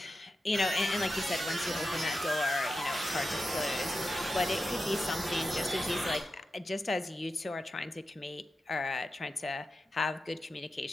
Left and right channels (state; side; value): normal; both; correlation 0.91